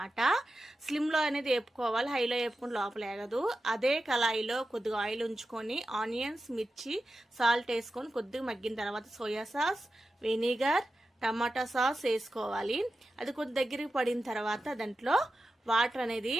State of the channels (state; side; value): normal; both; correlation 0.91